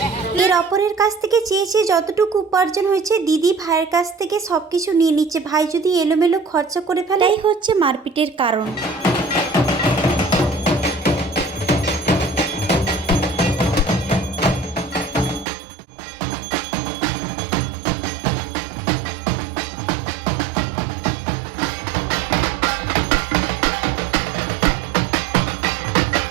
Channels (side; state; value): left; drops out; at 15.5 s